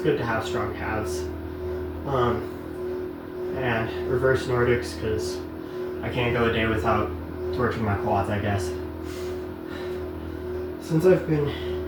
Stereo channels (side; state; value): both; identical; correlation 1.00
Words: to have strong calves, and reverse Nordics, because I can't go a day without torching my quads, I guess. Since I've been